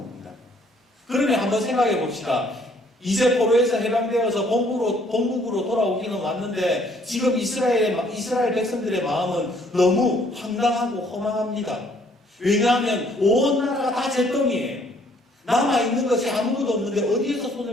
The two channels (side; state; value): both; normal; correlation 0.63